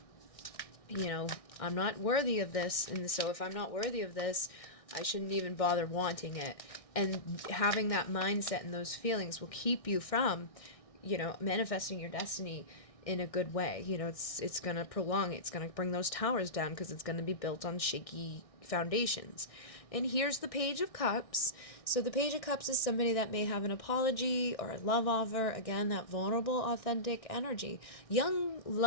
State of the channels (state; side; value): late; right; 1.6 ms